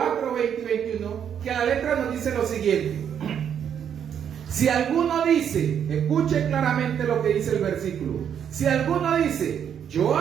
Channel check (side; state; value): left; quieter; 8.6 dB